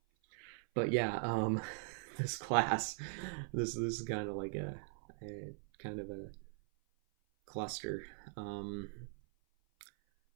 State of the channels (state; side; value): silent; left; 51 dB below the other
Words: But yeah, this class, this is kind of like a kind of a cluster. Um,